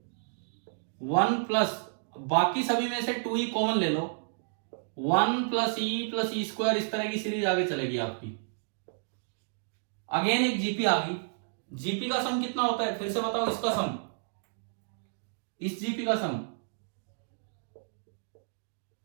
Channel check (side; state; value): left; silent; digital silence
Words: 1 प्लस, बाकी सभी में से 2e कॉमन ले लो, 1 + e + e², इस तरह की सीरीज आगे चलेगी आपकी। अगेन एक जीपी आ गई। जीपी का सम कितना होता है? फिर से बताओ इसका सम, इस जीपी का sum